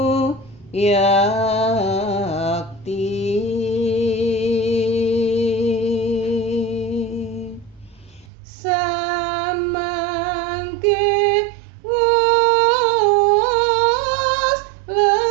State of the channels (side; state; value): left; drops out; at 8.2 s